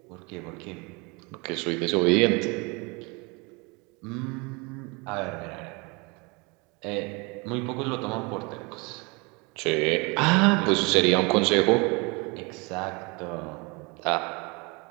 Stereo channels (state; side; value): quieter; left; 28.4 dB